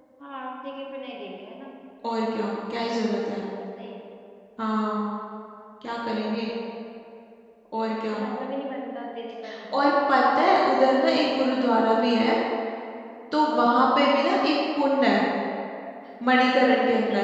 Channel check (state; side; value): identical; both; correlation 1.00